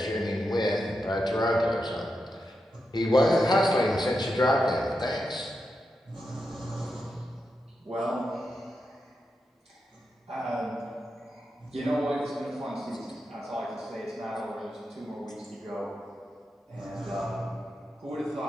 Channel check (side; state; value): both; normal; correlation 0.87